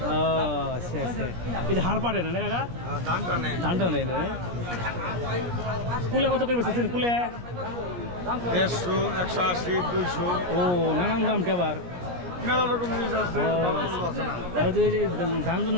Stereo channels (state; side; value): late; left; 17 ms